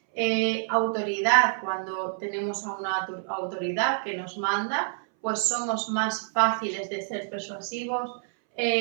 Autoridad, cuando tenemos a una autoridad que nos manda, pues somos más fáciles de ser persuasivos.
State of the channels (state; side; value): silent; left; 60 dB below the other